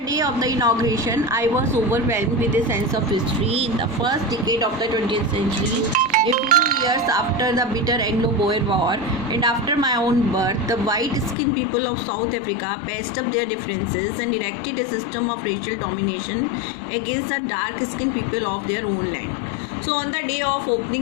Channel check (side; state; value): right; drops out; at 11.4 s